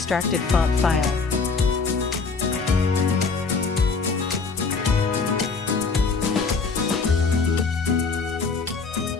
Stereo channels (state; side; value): quieter; right; 4.6 dB